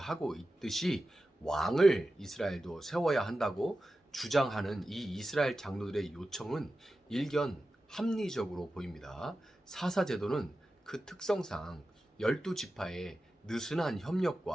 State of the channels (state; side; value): normal; both; correlation 0.93